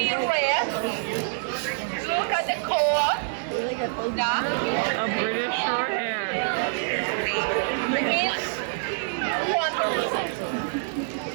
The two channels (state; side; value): silent; left; digital silence